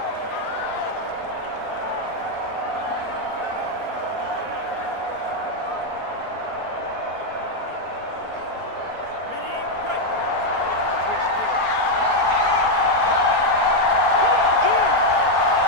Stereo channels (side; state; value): left; late; 4.3 ms